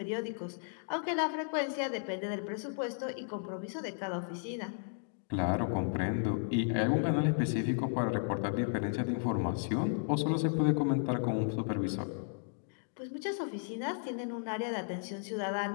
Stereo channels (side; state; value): right; silent; digital silence